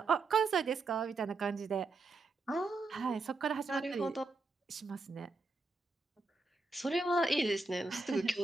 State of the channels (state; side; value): quieter; left; 3.6 dB